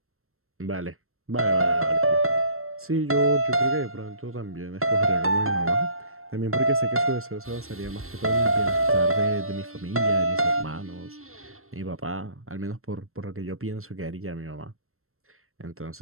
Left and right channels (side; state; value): left; late; 0.62 ms